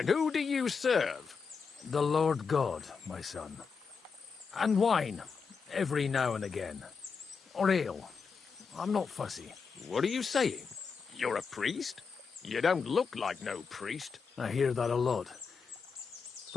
who do you serve? The Lord God, my son. And wine, every now and again. Or ale. I'm not fussy. What are you saying? You're a priest? You don't look like no priest. I hear that a lot.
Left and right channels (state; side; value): quieter; right; 5.5 dB